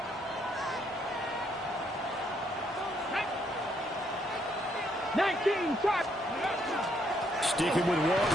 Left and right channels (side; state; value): both; normal; correlation 0.72